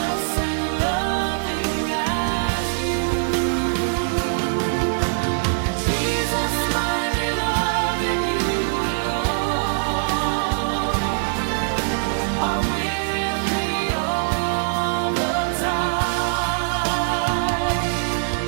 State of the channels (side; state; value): left; silent; digital silence